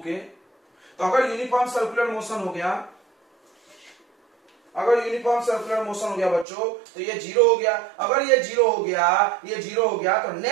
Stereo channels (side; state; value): left; drops out; at 6.5 s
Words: तो अगर यूनिफॉर्म सर्कुलर मोशन हो गया, अगर यूनिफॉर्म सर्कुलर मोशन हो गया बच्चों, तो ये 0 हो गया। अगर ये 0 हो गया, ये 0 हो गया, तो